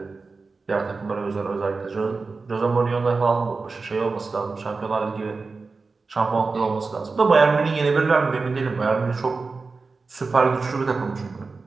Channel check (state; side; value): quieter; left; 4.1 dB